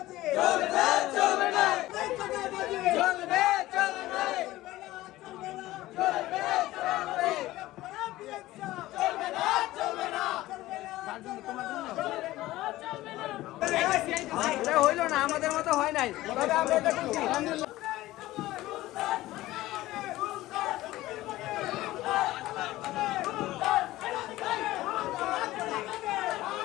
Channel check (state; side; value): quieter; right; 16.8 dB